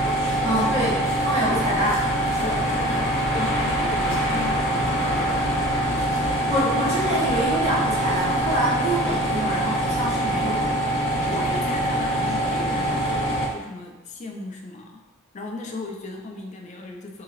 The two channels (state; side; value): normal; both; correlation 0.42